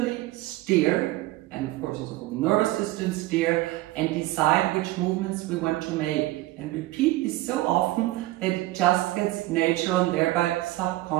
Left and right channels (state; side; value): quieter; left; 17.8 dB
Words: steer, and of course also nervous system steer, and decide which movements we want to make. And repeat this so often that it just gets natural and thereby